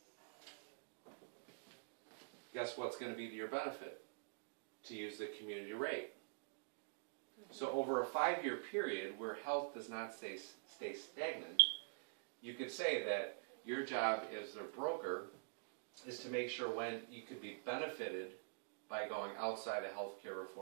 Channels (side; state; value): left; silent; digital silence